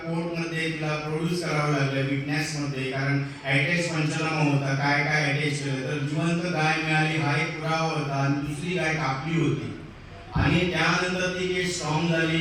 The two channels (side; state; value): both; identical; correlation 1.00